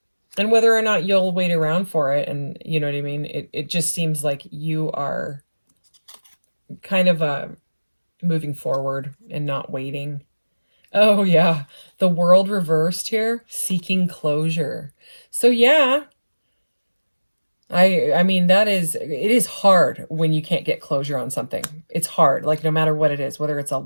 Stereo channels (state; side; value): inverted; both; correlation -1.00